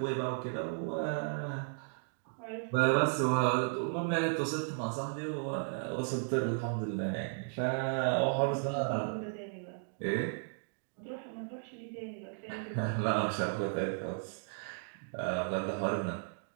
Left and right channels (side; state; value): left; silent; digital silence